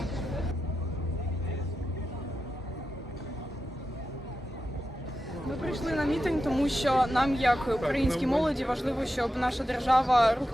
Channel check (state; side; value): normal; both; correlation 0.90